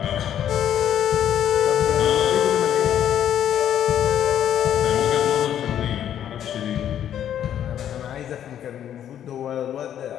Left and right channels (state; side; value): quieter; right; 10.2 dB